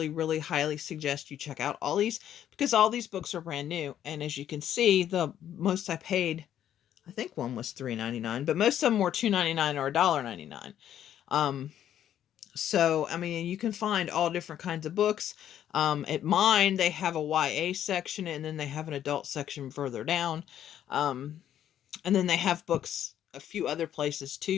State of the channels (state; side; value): quieter; right; 10.6 dB